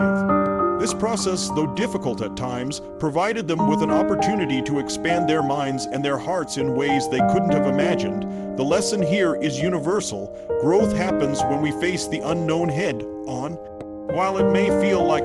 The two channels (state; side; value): identical; both; correlation 1.00